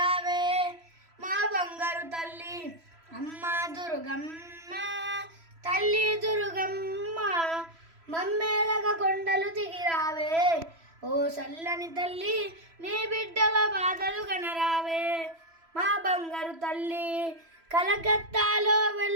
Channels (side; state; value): left; late; 3.0 ms